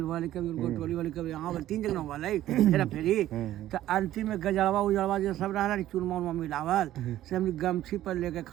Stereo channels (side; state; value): left; quieter; 13.5 dB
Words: वाले कभी गोटोली वाले कभी यहाँ वाले 3 जगह वाले फेरा फेरी तो अंतिम में गजड़वा उजड़वा जो सब रहा चूरमा उरमा मिलावल से हम गमछी पर लेके